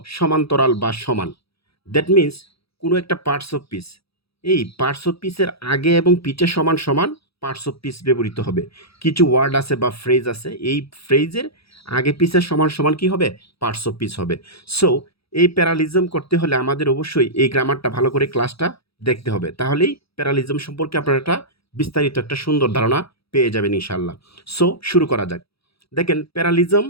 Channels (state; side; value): late; right; 0.77 ms